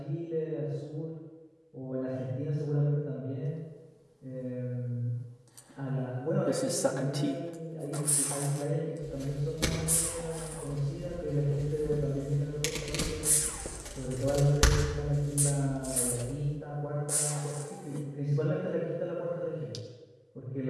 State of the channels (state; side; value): identical; both; correlation 1.00